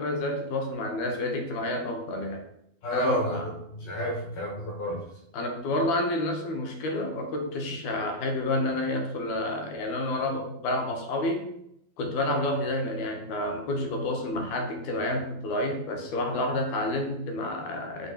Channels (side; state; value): right; late; 12 ms